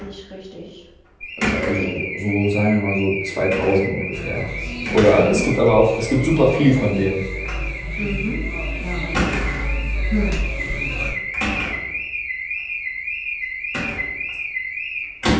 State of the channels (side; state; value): both; identical; correlation 1.00